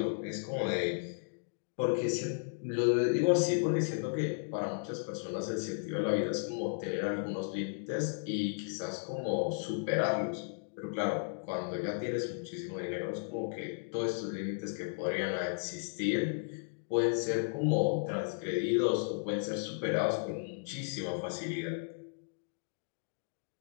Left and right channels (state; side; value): silent; right; digital silence